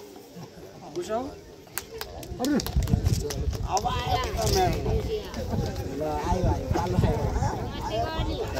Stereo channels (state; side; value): identical; both; correlation 1.00